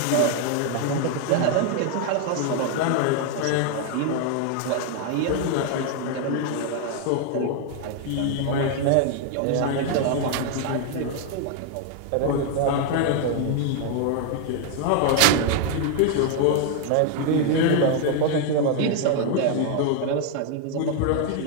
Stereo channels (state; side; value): different; both; correlation 0.00